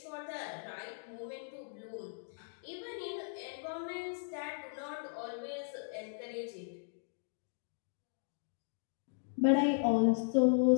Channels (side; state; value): right; silent; digital silence